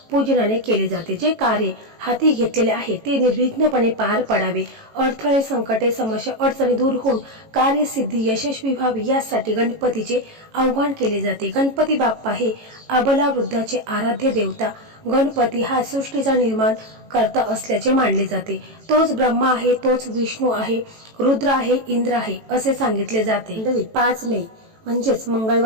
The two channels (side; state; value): left; late; 18 ms